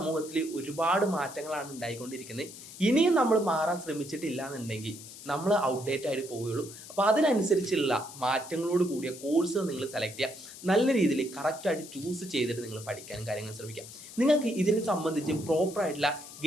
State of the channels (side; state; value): left; noise; hiss, 15 dB below the sound